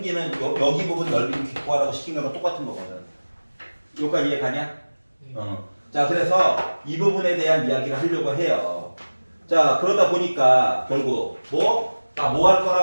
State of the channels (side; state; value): both; inverted; correlation -1.00